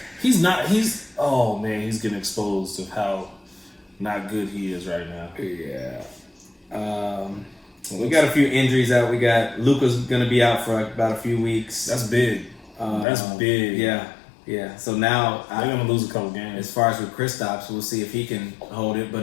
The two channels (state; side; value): drops out; right; at 13.1 s